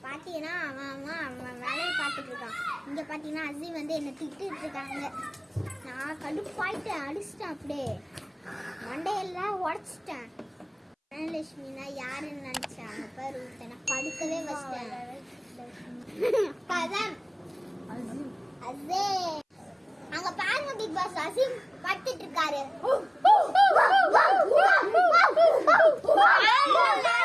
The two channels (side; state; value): both; identical; correlation 1.00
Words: பாத்தீங்கன்னா அவன் வேலையை பார்த்துட்டு இருக்கான். இங்க பாத்தீங்கன்னா அசீம் வந்து என்ன திட்டிட்டு இருக்காங்க. நான் கடுப்பாயிட்டு அடிச்சிட்டேன், அப்படியே மண்டையெல்லாம் உடைச்சிட்டேன். லட்சுமினா யாருன்னு நினைச்சேன், அங்க பாரு நான் படுக்கவே வச்சிட்டேன். கதம் அசீம் அங்க பாருங்க பிக் பாஸ், அசீம் படுத்துட்டு இருக்காரு.